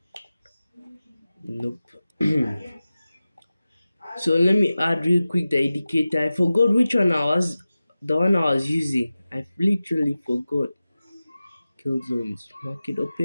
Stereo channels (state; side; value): inverted; both; correlation -0.95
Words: Nope. So let me add real quick the indicator. I forgot which one the one I was using. I literally forgot. Kill zones. Market